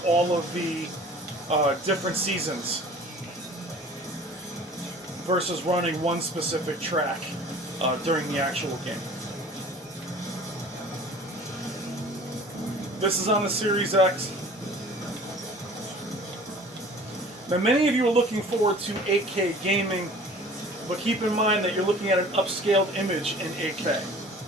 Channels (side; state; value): both; normal; correlation 0.46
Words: all of the different seasons versus running one specific track during the actual game. This is on the Series X. Now, many of you are looking forward to 8K gaming, but keep in mind that you're looking at an upscaled image in 8K.